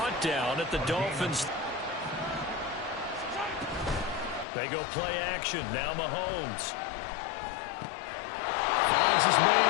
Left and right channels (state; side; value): drops out; right; at 4.5 s